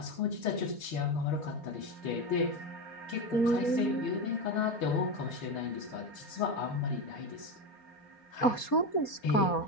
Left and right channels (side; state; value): right; late; 4.3 ms